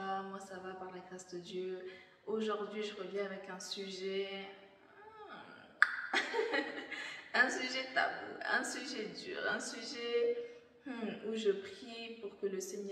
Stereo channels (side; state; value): both; identical; correlation 1.00